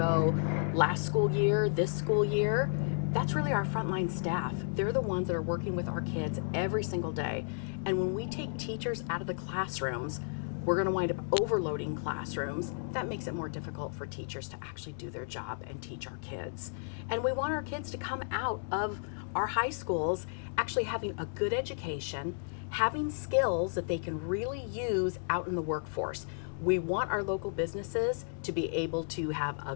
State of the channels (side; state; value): right; silent; digital silence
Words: last school year, this school year. That's really our frontline staff. They're the ones that are working with our kids every single day. And when we take teachers out of the classrooms, we're going to wind up overloading classrooms. That makes it more difficult for teachers to actually do their job and teach our kids. And we want our kids to come out of our high schools actually having a good education, having skills that they can really use out in the workforce. We want our local businesses to be able to have a